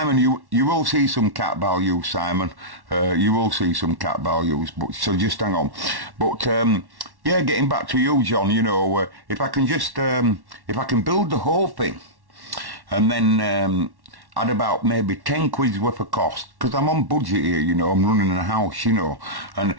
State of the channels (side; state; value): left; late; 1.1 ms